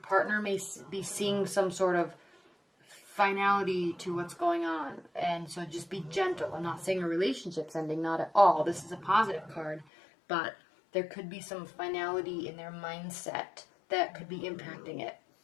may be seeing some sort of finality to what's going on, and so just be gentle. I'm not saying a relationship's ending, not at all. This is a positive card, but there could be some finality in their mindset that could be impacting it,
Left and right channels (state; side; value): drops out; right; at 9.9 s